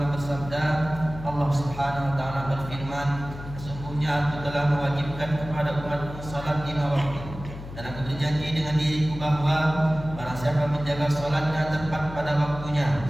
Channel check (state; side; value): noise; left; hum, 12 dB below the sound